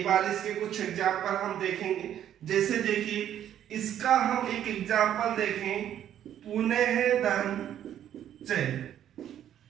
बार इसके कुछ एग्जाम्पल हम देखेंगे। जैसे देखिए, इसका हम एक एग्जाम्पल देखें, पुनः धन च,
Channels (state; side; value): quieter; left; 10.6 dB